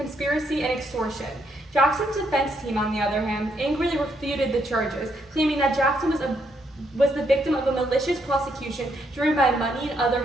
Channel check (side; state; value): both; normal; correlation 0.75